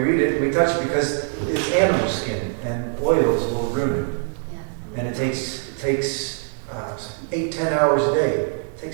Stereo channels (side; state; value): left; silent; digital silence